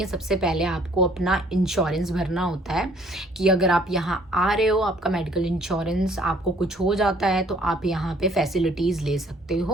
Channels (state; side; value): normal; both; correlation 0.59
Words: सबसे पहले आपको अपना इंश्योरेंस भरना होता है, कि अगर आप यहाँ आ रहे हो, आपका मेडिकल इंश्योरेंस, आपको कुछ हो जाता है तो आप यहाँ पे फैसिलिटीज़ ले सकते